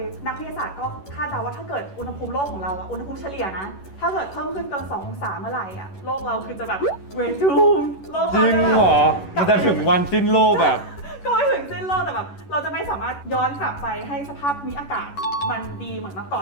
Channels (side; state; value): right; late; 11 ms